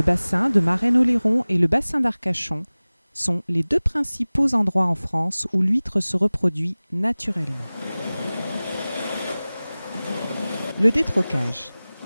bassin de Marraine-Oléron et le bassin d'Arcachon sont les deux principaux endroits en France où l'huître se reproduit naturellement. Le détrocage.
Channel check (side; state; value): both; inverted; correlation -0.99